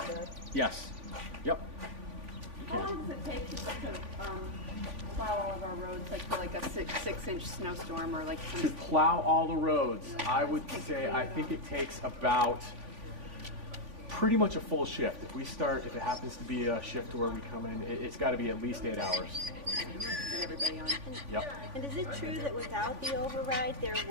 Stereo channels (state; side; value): late; left; 3.5 ms